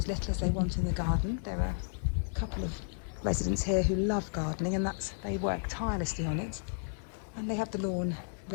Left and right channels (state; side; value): silent; right; digital silence